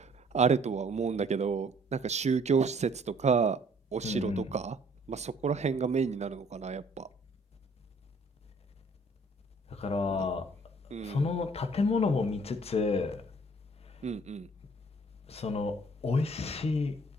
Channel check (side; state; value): both; normal; correlation 0.58